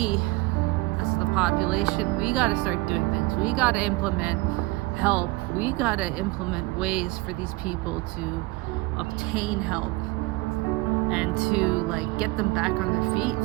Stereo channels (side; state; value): left; quieter; 21.6 dB